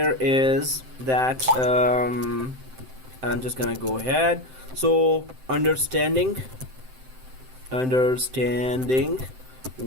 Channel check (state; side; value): late; left; 7.7 ms